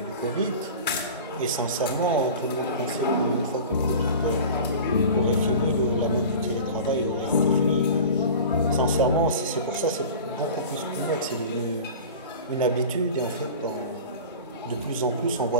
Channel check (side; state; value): both; inverted; correlation -0.36